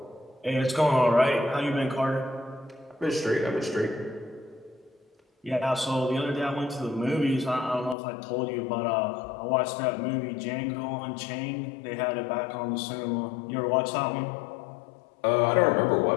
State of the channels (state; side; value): drops out; right; at 8.0 s